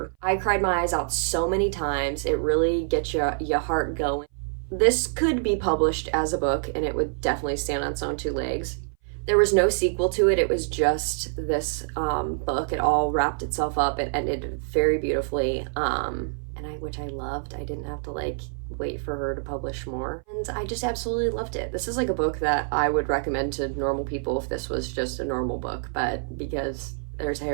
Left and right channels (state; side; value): silent; left; 58 dB below the other